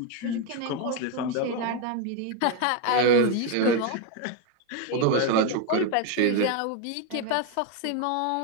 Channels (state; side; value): different; both; correlation 0.01